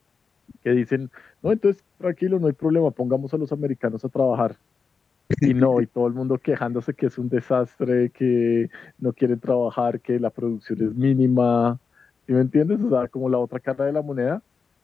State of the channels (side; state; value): right; quieter; 5.3 dB